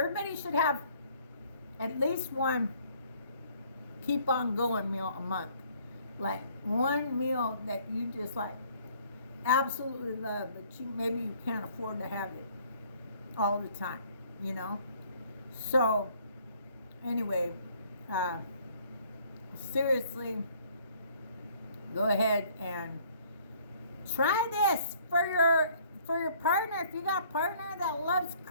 should have at least one keep on going meal a month. Like one meal that you just like absolutely love, but maybe you can't afford to have it all the time, you know? So, anyway, seriously, go ahead and try this for your partner. If you got a partner that loves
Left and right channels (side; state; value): both; inverted; correlation -0.60